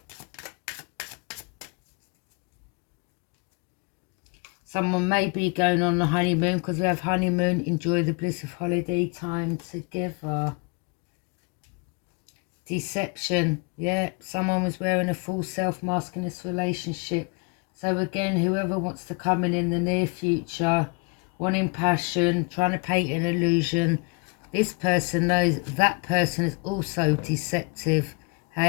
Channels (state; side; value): quieter; right; 31.1 dB